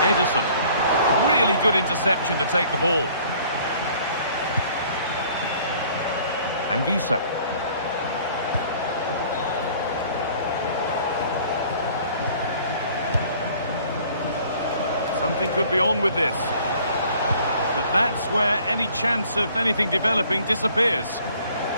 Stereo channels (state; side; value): inverted; both; correlation -0.55